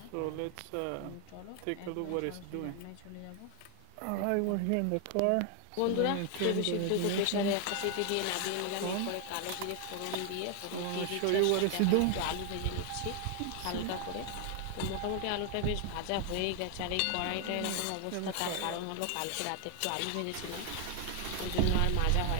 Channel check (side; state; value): both; different; correlation 0.00